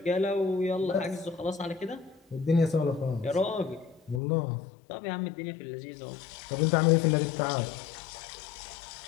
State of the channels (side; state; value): right; drops out; at 4.2 s